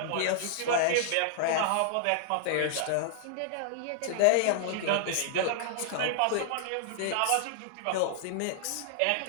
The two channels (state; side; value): different; both; correlation -0.01